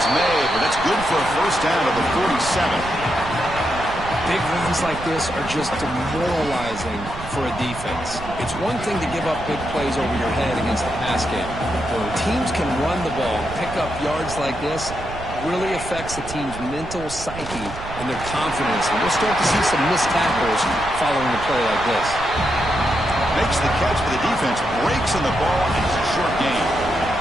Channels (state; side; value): noise; right; rumble, 11 dB below the sound